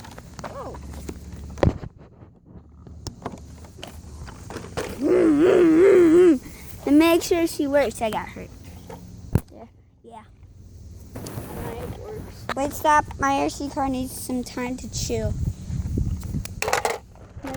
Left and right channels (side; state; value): both; identical; correlation 1.00